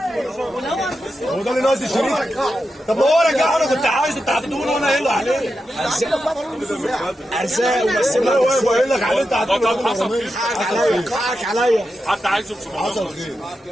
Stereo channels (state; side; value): normal; both; correlation 0.89